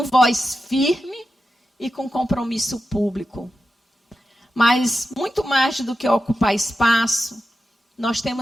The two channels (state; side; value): normal; both; correlation 0.91